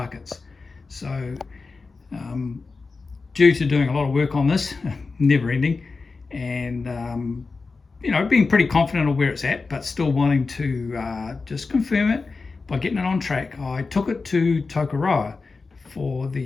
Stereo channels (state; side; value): quieter; right; 4.2 dB